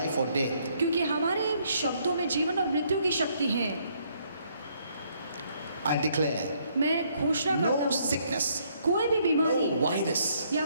or death. क्योंकि हमारे शब्दों में जीवन और मृत्यु की शक्ति है। I declare मैं घोषणा करता no हूँ sickness, कोई भी बीमारी no virus या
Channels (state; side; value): inverted; both; correlation -0.69